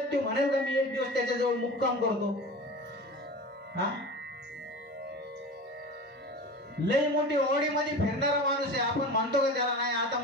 ते म्हणेल का मी एक दिवस त्याच्याजवळ मुक्काम करतो? हा, लय मोठी ऑडी मध्ये फिरणारा माणूस आहे, आपण म्हणतो का त्याला नाही आता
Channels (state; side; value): normal; both; correlation 0.33